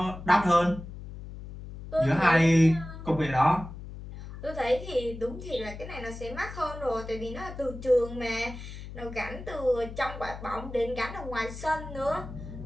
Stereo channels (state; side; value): noise; left; hum, 12 dB below the sound